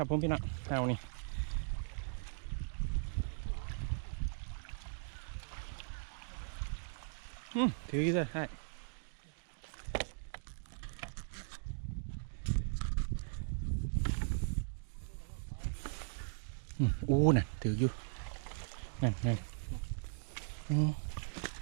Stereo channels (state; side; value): silent; left; digital silence